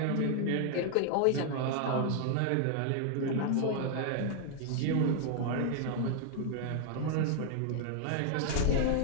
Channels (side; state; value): both; different; correlation 0.00